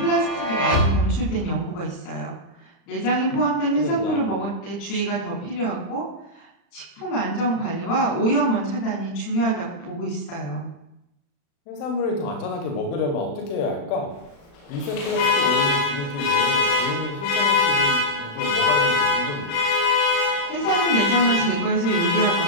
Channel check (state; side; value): late; right; 35 ms